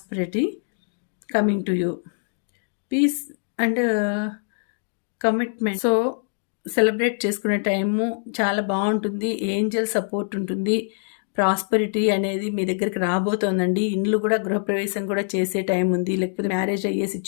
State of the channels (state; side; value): silent; right; digital silence